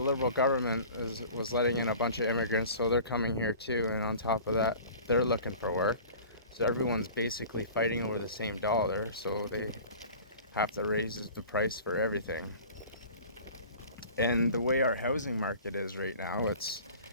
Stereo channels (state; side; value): inverted; both; correlation -0.43